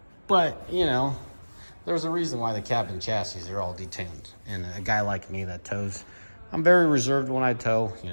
but you know, there's a reason why the cab and chassis are all detuned. And a guy like me that tows, I'm very reserved when I tow. You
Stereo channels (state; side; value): inverted; both; correlation -1.00